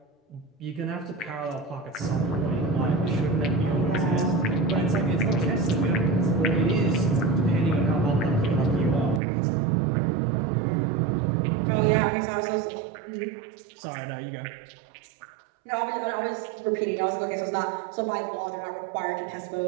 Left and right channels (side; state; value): left; drops out; at 9.2 s